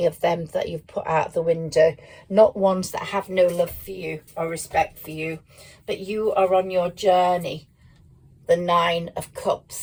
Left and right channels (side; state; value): both; identical; correlation 1.00